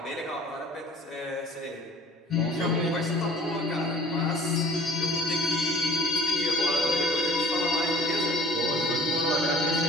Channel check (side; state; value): both; normal; correlation 0.50